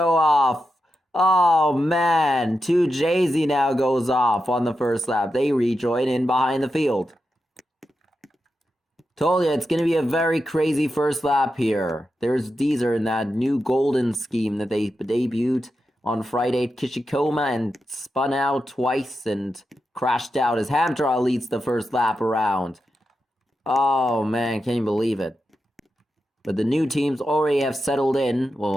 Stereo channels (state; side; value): normal; both; correlation 0.89